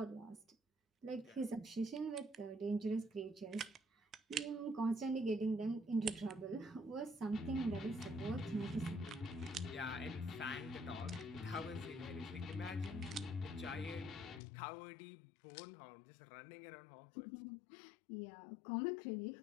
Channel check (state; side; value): drops out; right; at 14.4 s